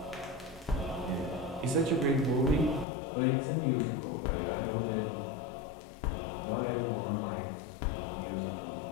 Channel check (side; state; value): right; drops out; at 2.9 s